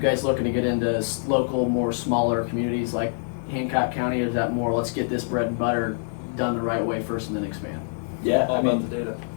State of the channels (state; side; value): silent; right; digital silence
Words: looking to get into local, more smaller communities like Hancock County? Is that more, let's get this bread and butter done the right way first and then expand? Yeah, All about the data.